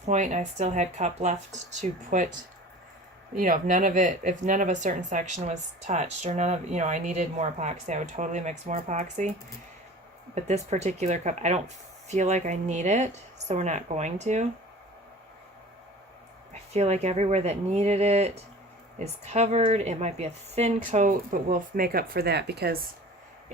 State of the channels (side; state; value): both; normal; correlation 0.41